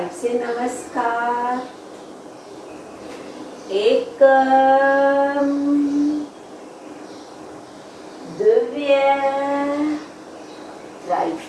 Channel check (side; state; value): both; identical; correlation 1.00